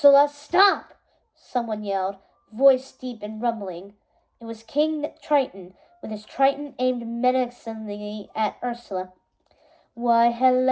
stop! Someone yelled, voice deep and rumbling. It was King Triton, with his trident aimed menacingly at Ursula. Why,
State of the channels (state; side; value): identical; both; correlation 1.00